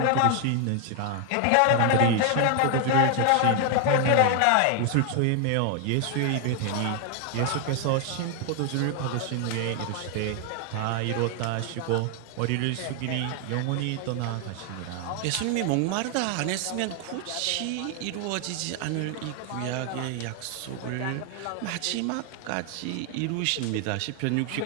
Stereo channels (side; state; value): both; different; correlation 0.00